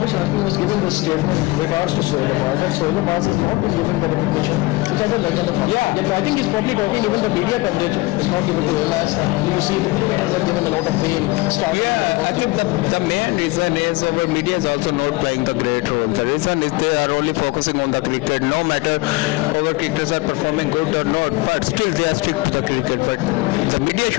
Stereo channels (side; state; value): right; quieter; 22.0 dB